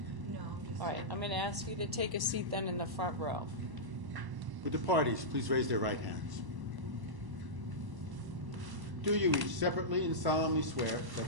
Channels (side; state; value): left; late; 1.1 ms